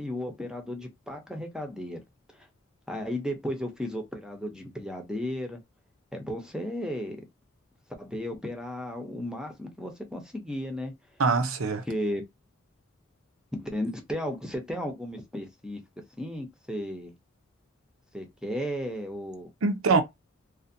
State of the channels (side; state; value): both; normal; correlation 0.43